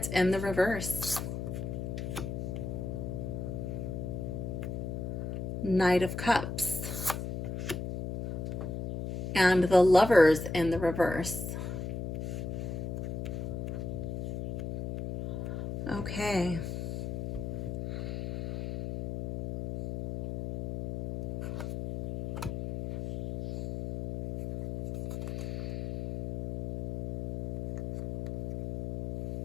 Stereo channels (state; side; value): noise; left; hum, 3 dB below the sound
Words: in the reverse. Knight of Cups. And the Lovers in the reverse. Okay.